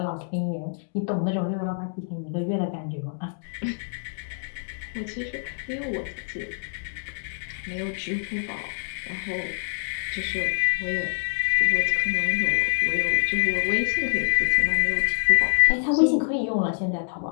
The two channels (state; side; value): silent; right; digital silence